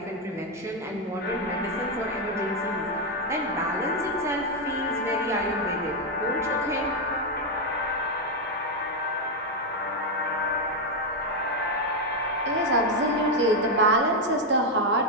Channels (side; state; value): both; normal; correlation 0.03